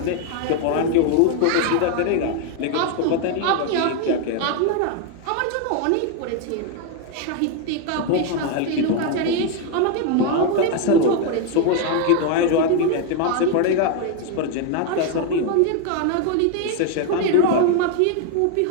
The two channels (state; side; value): different; both; correlation 0.01